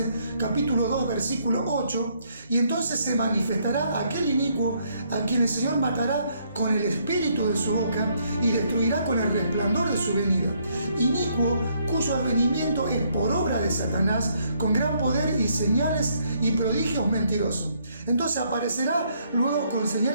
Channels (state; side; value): inverted; both; correlation -0.70